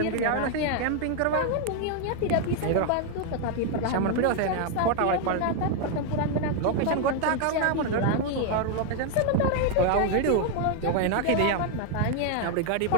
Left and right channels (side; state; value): both; different; correlation 0.00